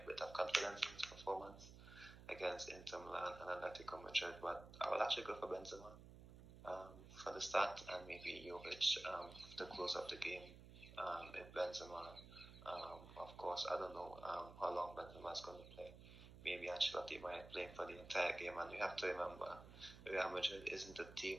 bit of confidence in his performance against Inter Milan and Atletico Madrid. But I will actually go for Benzema for the start and maybe Jovic to close up the game if Benzema. Of course, I don't know how long Benzema is going to play. Maybe Ancelotti might play for the entire game, and we have to remember Real Madrid isn't a team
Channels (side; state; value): right; noise; hum, 15 dB below the sound